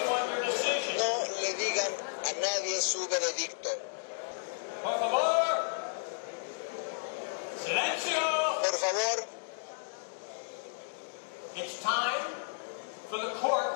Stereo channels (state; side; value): silent; right; digital silence